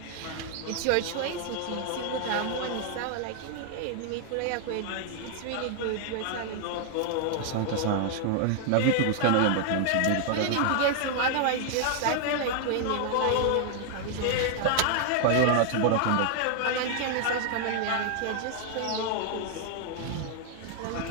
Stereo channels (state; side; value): different; both; correlation 0.00